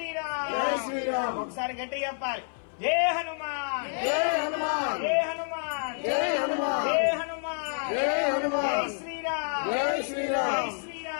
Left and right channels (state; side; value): silent; right; 56 dB below the other